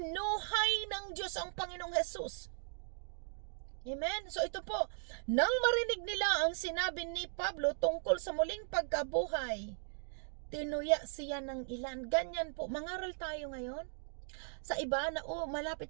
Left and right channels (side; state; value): left; silent; digital silence